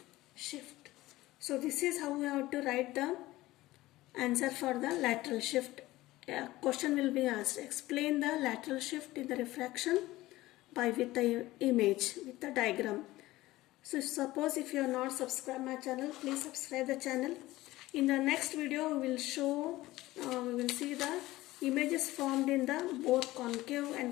shift. So this is how we have to write the answer for the lateral shift. A question will be asked. Explain the lateral shift in the refraction with the image, with the diagram. So suppose if you are not subscribed my channel, please subscribe the channel. In the next video we will show, we will see the images formed in the both concave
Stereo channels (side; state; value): right; quieter; 17.7 dB